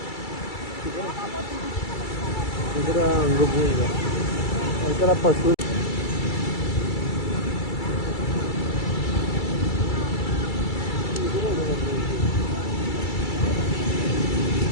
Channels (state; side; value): late; right; 2.3 ms